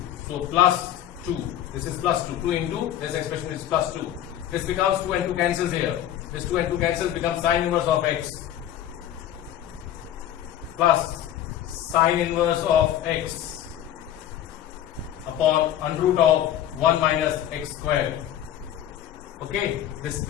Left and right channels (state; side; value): quieter; right; 11.4 dB